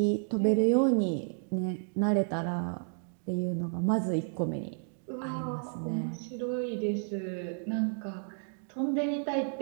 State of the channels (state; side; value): silent; left; 57 dB below the other